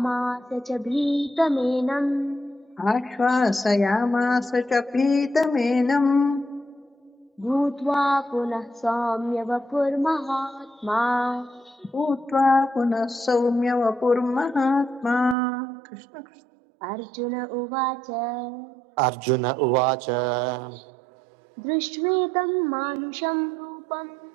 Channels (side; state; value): left; drops out; at 15.4 s